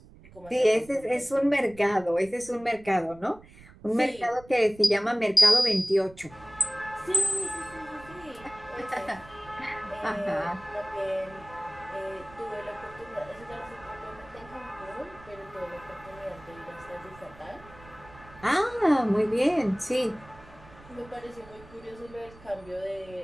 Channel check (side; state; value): right; noise; rumble, 21 dB below the sound